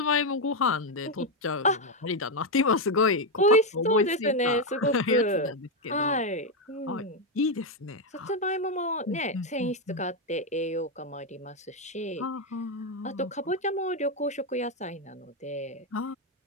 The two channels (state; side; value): normal; both; correlation 0.04